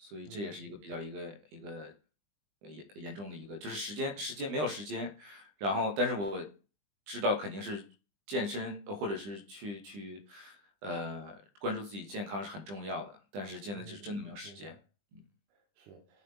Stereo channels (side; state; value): left; late; 20 ms